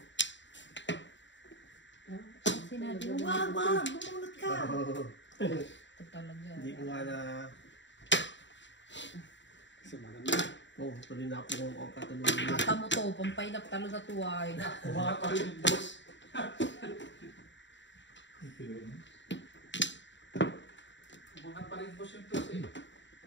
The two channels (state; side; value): late; right; 0.53 ms